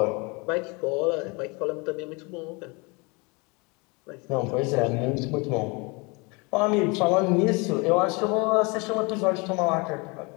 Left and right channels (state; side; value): quieter; right; 28.7 dB